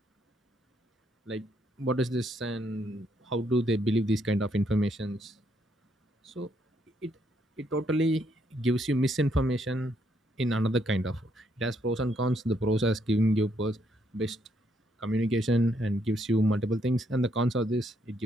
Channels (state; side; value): normal; both; correlation 0.73